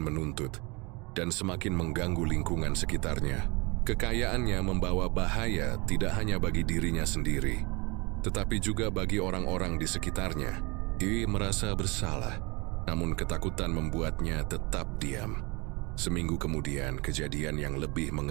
menuntut, dan semakin mengganggu lingkungan sekitarnya. Kekayaannya membawa bahaya tidak hanya bagi dirinya sendiri, tetapi juga bagi orang-orang di sekitarnya. Ia merasa bersalah, namun ketakutan membuatnya tetap diam. Seminggu kemudian, kejadian yang lebih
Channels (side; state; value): left; quieter; 27.5 dB